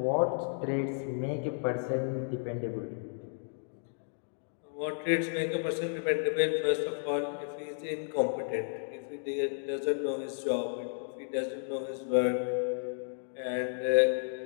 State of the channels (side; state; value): right; silent; digital silence